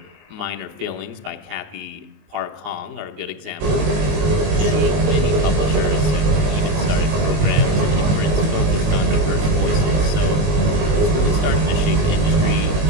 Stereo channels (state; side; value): late; left; 19 ms